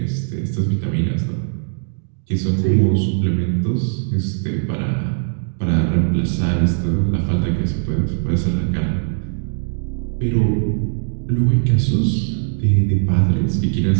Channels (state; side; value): silent; left; digital silence